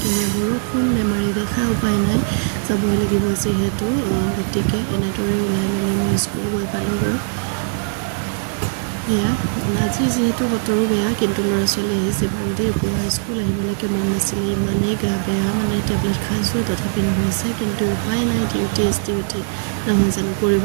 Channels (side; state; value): left; silent; digital silence